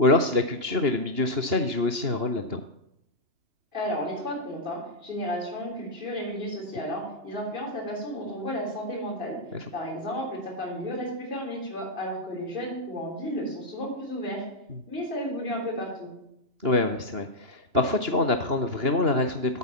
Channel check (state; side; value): late; left; 2.8 ms